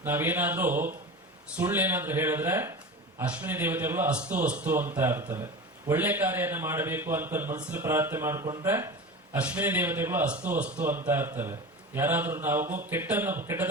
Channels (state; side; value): normal; both; correlation 0.30